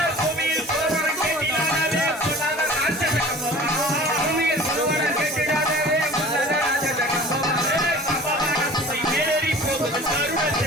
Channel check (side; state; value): both; normal; correlation 0.43